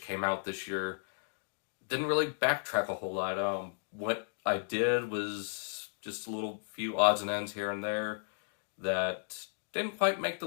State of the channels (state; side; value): silent; right; digital silence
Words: came out this year. Didn't really backtrack a whole lot. What I did was just a little few odds and ends here and there that didn't quite make the